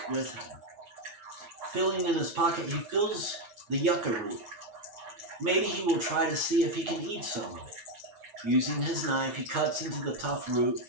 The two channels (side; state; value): left; late; 9.5 ms